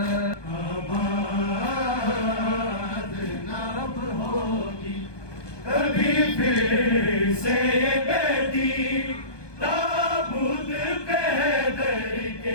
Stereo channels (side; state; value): right; late; 1.2 ms